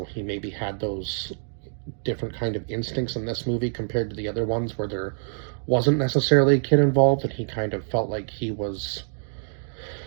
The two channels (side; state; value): left; silent; digital silence